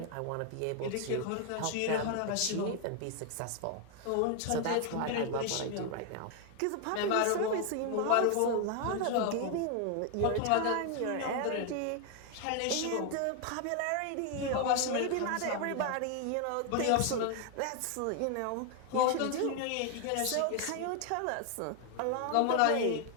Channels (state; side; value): different; both; correlation 0.00